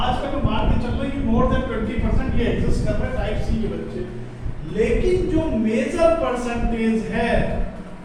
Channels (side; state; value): both; identical; correlation 1.00